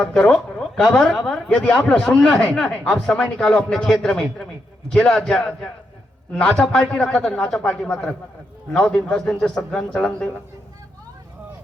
करो कबर यदि आप लोग सुनना है आप समय निकालो अपने क्षेत्र में जिला नाचा पार्टी रखा था नाचा पार्टी मत रख 9 दिन 10 दिन से सदग्रहण चलन देगा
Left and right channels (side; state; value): both; normal; correlation 0.82